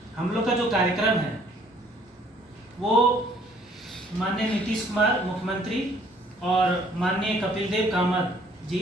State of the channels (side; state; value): both; normal; correlation 0.60